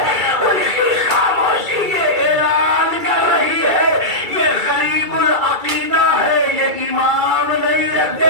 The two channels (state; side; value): late; left; 2.3 ms